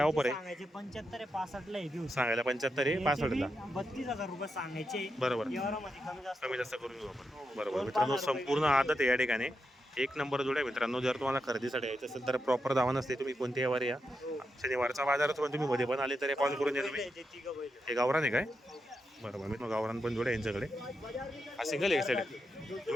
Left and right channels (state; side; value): normal; both; correlation 0.85